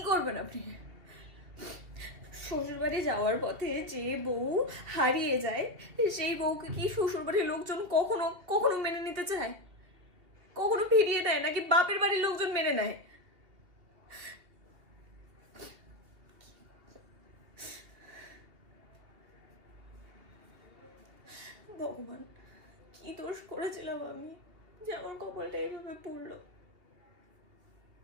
করবেন আপনি? শ্বশুর বাড়ি যাওয়ার পথে যে বউ হারিয়ে যায় সেই বউকে কি শ্বশুর বাড়ির লোকজন কখনো কখনো মেনে নিতে চায়? কখনো ফিরিয়ে দেয় নাকি বাপের বাড়ির লোকজন মেনে নেয়? ভগবান, কি দোষ করেছিলাম আমি যে আমার কপালটা এইভাবে পড়লো?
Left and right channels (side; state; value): left; late; 2.8 ms